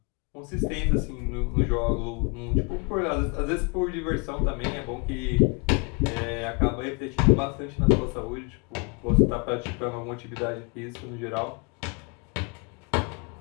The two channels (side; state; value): right; quieter; 32.8 dB